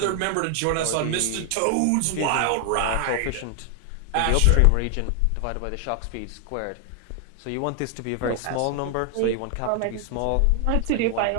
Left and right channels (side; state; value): both; different; correlation 0.00